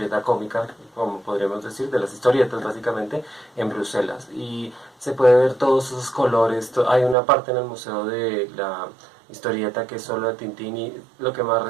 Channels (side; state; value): left; drops out; at 7.2 s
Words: Cómica, como podríamos decir, de las historietas básicamente, en Bruselas. Y se puede ver todos esos colores. Hay una parte en el Museo de la Historieta que es solo de Tintín, y lo que más